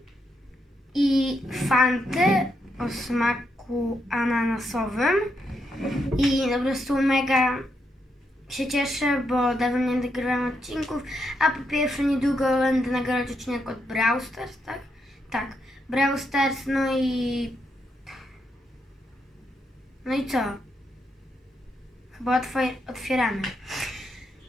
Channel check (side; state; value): both; normal; correlation 0.80